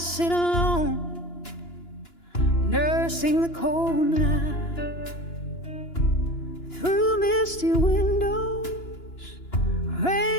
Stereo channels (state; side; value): late; right; 2.9 ms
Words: alone, nursing the cold night. Through misty windows,